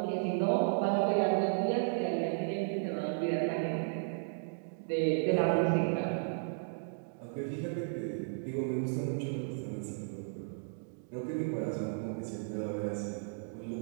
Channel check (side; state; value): left; silent; digital silence